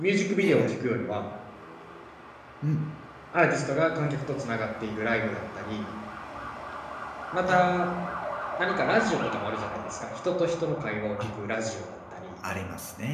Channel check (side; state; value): both; identical; correlation 1.00